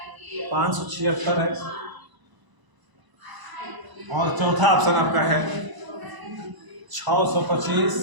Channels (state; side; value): late; left; 1.0 ms